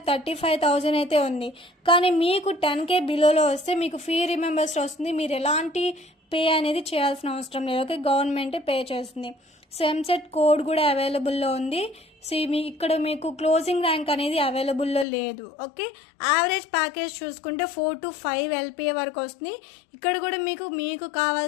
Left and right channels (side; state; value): right; drops out; at 15.1 s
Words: అయితే ఉంది. కానీ మీకు 10K బిలోలో వస్తే మీకు ఫీ రిమెంబర్స్ వస్తుంది. మీరు ఎలాంటి పే అనేది చేయాల్సిన అవసరం లేదు. ఓకే, గవర్నమెంటే పే చేస్తుంది. సో ఎంసెట్ కోడ్ కూడా అవైలబుల్లో ఉంది. సో ఇక్కడ మీకు క్లోజింగ్ ర్యాంక్ అనేది అవైలబుల్లో లేదు. ఓకే, యావరేజ్ ప్యాకేజ్ చూసుకుంటే 4 to 5 LPA వరకు వస్తుంది. ఇక్కడ కూడా మీకు